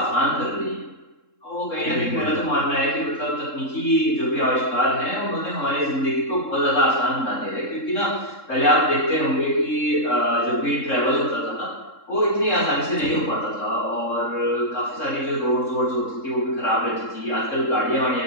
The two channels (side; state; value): right; late; 3.7 ms